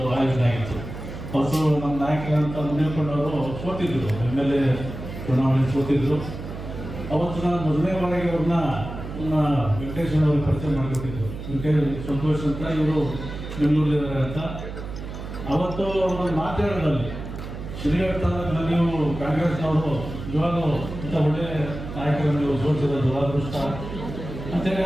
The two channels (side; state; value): right; noise; hum, 9 dB below the sound